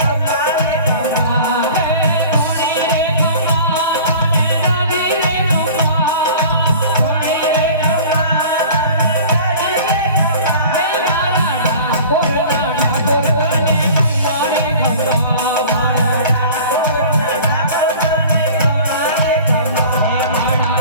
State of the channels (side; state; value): both; inverted; correlation -0.43